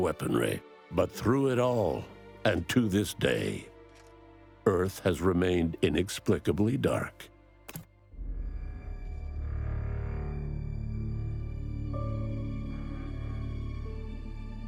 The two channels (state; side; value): identical; both; correlation 1.00